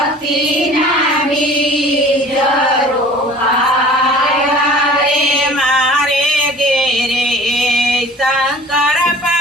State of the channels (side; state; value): both; normal; correlation 0.46